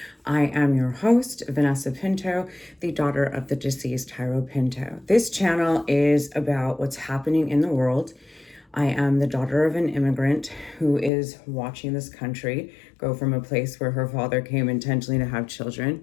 I am your host, Vanessa Pinto, the daughter of the deceased Jairo Pinto. This channel is about what's happening in the world. I am the daughter of an immigrant who is watching this country go from a place where her father came intentionally to have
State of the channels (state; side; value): drops out; right; at 11.1 s